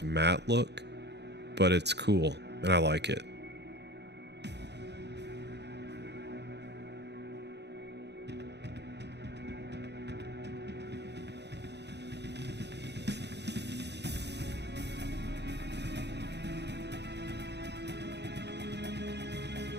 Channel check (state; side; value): late; left; 0.50 ms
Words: matte look, but it's cool and I like it.